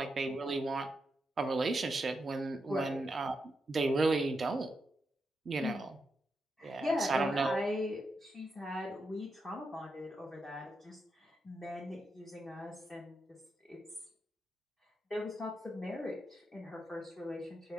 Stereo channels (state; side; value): normal; both; correlation 0.85